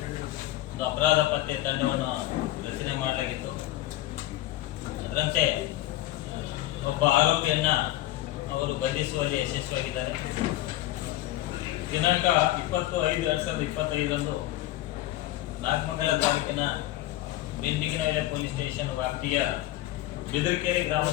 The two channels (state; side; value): quieter; right; 15.6 dB